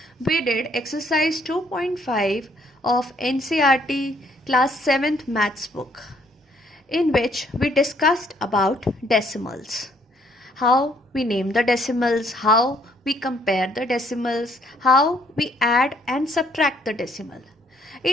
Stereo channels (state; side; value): normal; both; correlation 0.66